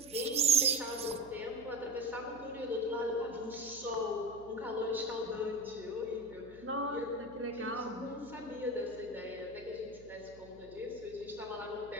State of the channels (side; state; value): right; noise; hum, 20 dB below the sound